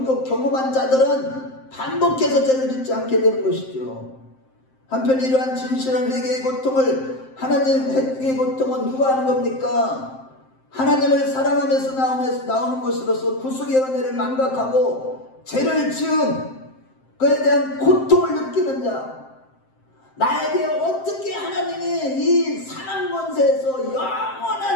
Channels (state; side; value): late; right; 7.6 ms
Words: 자들은 반복해서 죄를 짓지 않게 되는 것이죠. 한편 이러한 진실한 회개의 고통을, 하나님 회개의 고통은 누가 하는 겁니까? 하나님을 사랑하면서 나오는 것으로서 구속의 은혜를 망각하고 죄를 지은 그에 대한 고통을 느끼는 자, 나에게 어떻게 하나님이 이 사망 권세에서